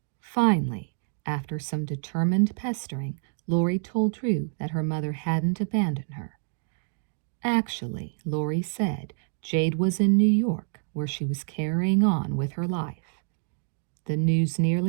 Finally, after some determined pestering, Lori told Drew that her mother hadn't abandoned her. Actually, Lori said, Jade was in New York, where she was carrying on with her life. The news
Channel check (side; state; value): left; silent; 60 dB below the other